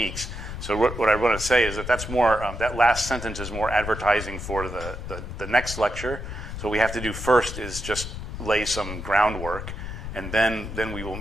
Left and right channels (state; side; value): noise; left; rumble, 8 dB below the sound